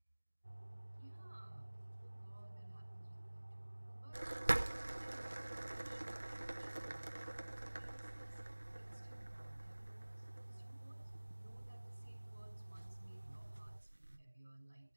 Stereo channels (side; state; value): both; inverted; correlation -1.00